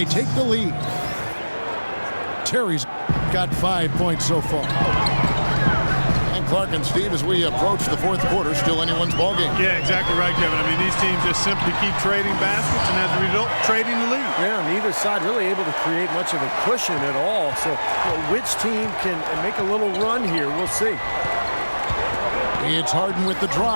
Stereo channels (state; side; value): inverted; both; correlation -1.00